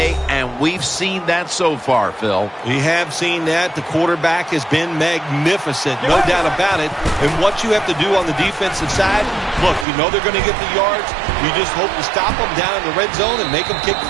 and we've seen that so far, Phil. We have seen that. The quarterback has been magnificent, no doubt about it. And what you have to do on the defensive side, look, you know they're going to get the yards. You just hope to stop them down in the red zone and make them kick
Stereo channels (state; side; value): drops out; left; at 9.9 s